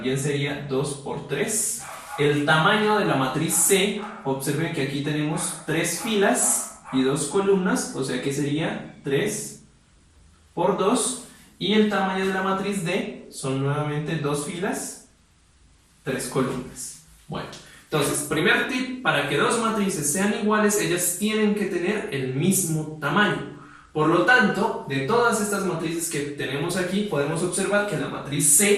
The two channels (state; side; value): identical; both; correlation 1.00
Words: sería 2 por 3. El tamaño de la matriz C, observen que aquí tenemos 3 filas y 2 columnas, o sea que sería 3 por 2. Y el tamaño de la matriz D son nuevamente 2 filas, 3 columnas. Bueno, entonces, primer tip, para que dos matrices sean iguales, ellas tienen que tener el mismo tamaño. Por lo tanto, de todas estas matrices que tenemos aquí, podemos observar que la matriz